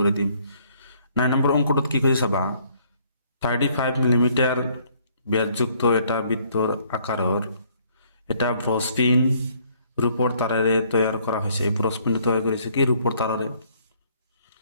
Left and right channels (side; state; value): both; inverted; correlation -0.64